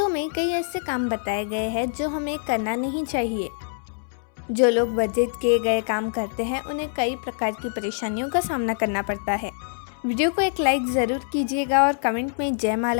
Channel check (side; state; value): right; silent; 62 dB below the other